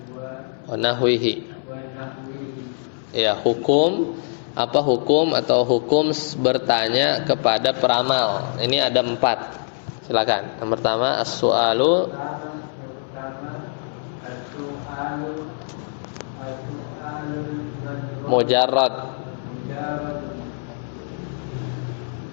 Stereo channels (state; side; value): silent; right; 63 dB below the other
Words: wa nahwihi. Ya, hukum apa hukum atau hukum bertanya kepada peramal. Ini ada 4. Silakan. Yang pertama as-su'alu mujarrad